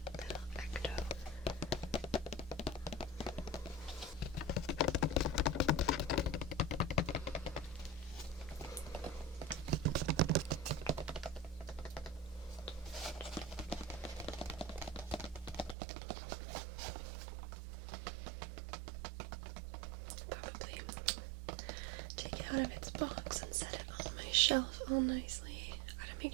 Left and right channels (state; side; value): drops out; left; at 15.8 s